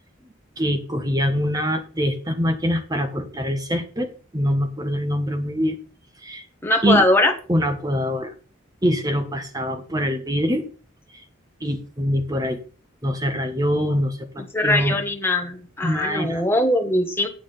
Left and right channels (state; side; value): normal; both; correlation 0.64